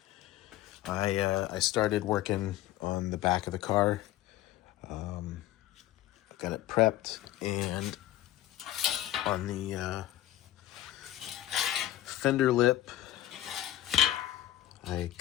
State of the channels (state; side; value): quieter; right; 13.9 dB